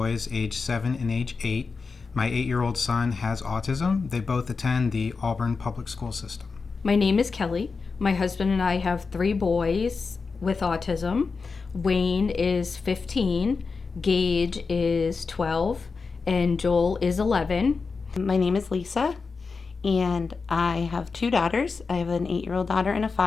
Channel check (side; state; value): right; quieter; 4.7 dB